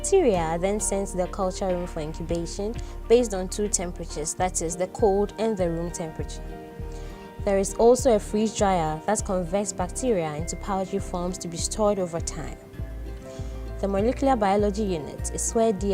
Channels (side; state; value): both; identical; correlation 1.00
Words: are then sent to the culture room for incubation based on two temperatures, that is, the cold and the room temperature. There is also a freeze dryer that converts bacteria into powdery forms to be stored over time. The Molecular Biology unit is where